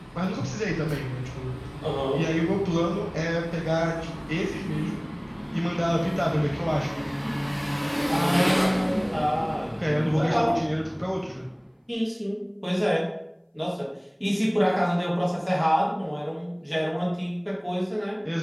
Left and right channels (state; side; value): identical; both; correlation 1.00